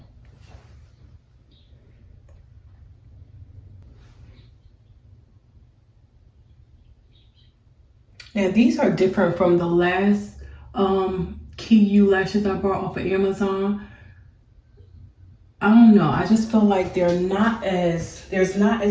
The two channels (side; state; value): both; identical; correlation 1.00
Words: Now these are different from the last KeyU lashes I bought off of Amazon. I don't know, I just feel like there's not as